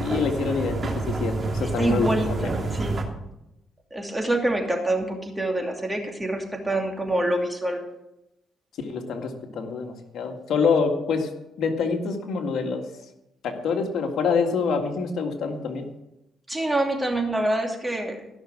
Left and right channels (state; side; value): normal; both; correlation 0.76